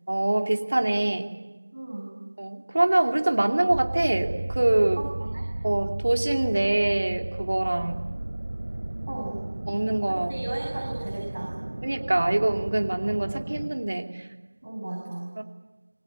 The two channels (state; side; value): inverted; both; correlation -1.00